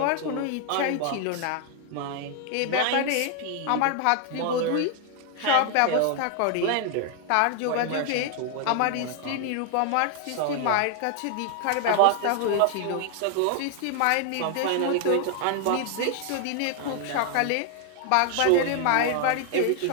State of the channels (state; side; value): different; both; correlation 0.00